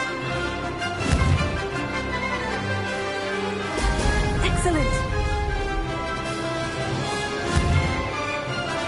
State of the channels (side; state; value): both; identical; correlation 1.00